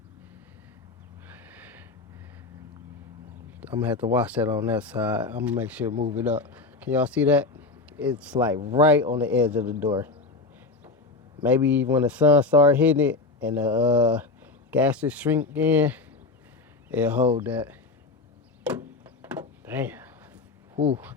I'm gonna have to watch that on that side. I'm gonna make sure to move it up. Can y'all see that? It's like right on the edge of the door. Maybe when the sun starts hitting it and the gases shrink in, it'll hold that. Damn. Whew.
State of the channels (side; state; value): right; quieter; 3.6 dB